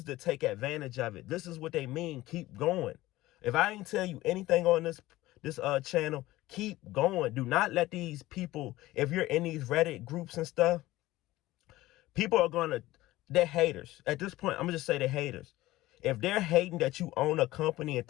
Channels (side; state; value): right; quieter; 17.2 dB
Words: to take advantage of it. This is what they mean, keep going. If I ain't tell you anything on this channel, keep going. Do not let these people, if you're in these Reddit groups and stuff, people are they're haters. At this point, I'm going to just say they're haters. If they're hating that you own a company and